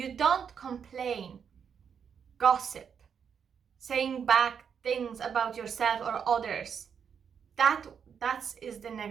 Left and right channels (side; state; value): left; quieter; 7.2 dB